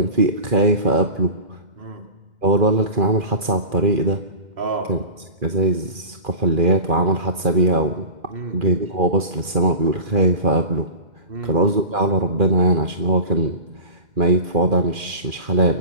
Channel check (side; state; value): left; late; 2.4 ms